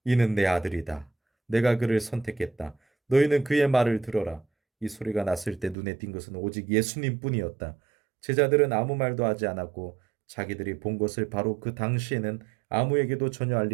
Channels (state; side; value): drops out; left; at 5.8 s